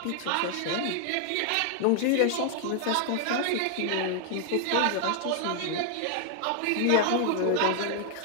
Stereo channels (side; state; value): both; different; correlation 0.00